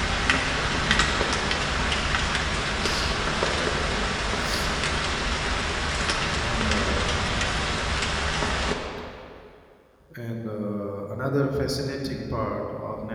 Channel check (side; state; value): both; identical; correlation 1.00